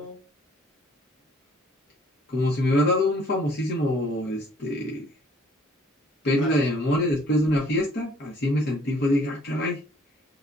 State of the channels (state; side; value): normal; both; correlation 0.59